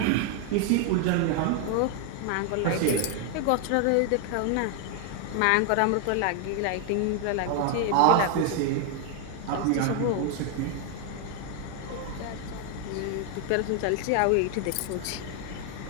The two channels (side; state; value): both; different; correlation 0.00